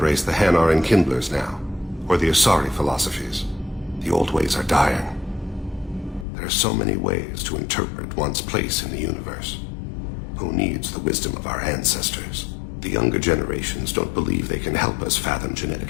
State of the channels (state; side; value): drops out; right; at 6.2 s